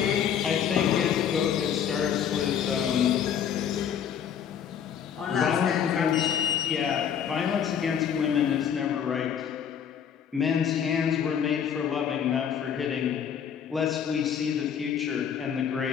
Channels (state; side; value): quieter; right; 8.3 dB